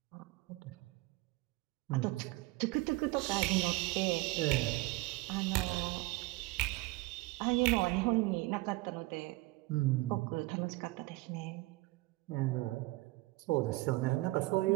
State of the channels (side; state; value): left; quieter; 21.3 dB